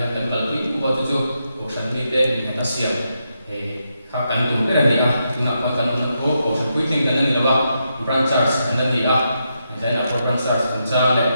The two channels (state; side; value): inverted; both; correlation -0.83